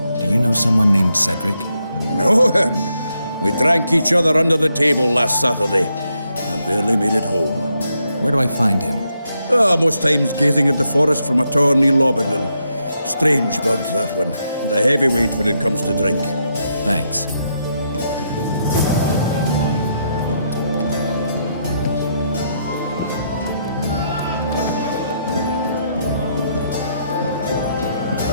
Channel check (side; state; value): both; inverted; correlation -0.79